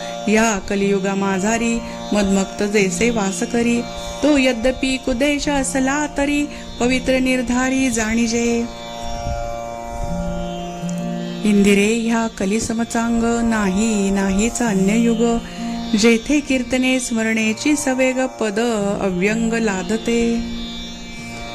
या कलियुगा माझारी मदमक्त जैसे वास करी, तो यद्यपि कुदेश असला तरी पवित्र निर्धारी जाणीजे. इंदिरे ह्या कलिसमचांग, नाहीचा अन्य युग, जेथे कीर्तने स्मरणेची सवेग पद अव्यंग लादते.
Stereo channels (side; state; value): both; identical; correlation 1.00